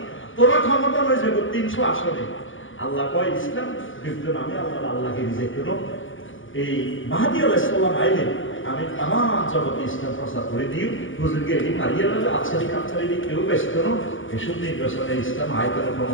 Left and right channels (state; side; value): late; right; 0.57 ms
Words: তোরা ক্ষমতা হয়ে যাবে 300 আসনে আল্লাহ কয় ইসলাম বিদ্যুৎ আমি আল্লাহকে রিজেক্ট করব এই মাহদী আলাইহিস সালাম আইলে আমি তামাম জগতে ইসলাম প্রচার করে দিই হুজুরকে এটি মারিয়ে দেবে আচ্ছারি কাচ্ছারি কেউ ব্যস্ত করো এসব নির্বাচনে ইসলাম আয়তন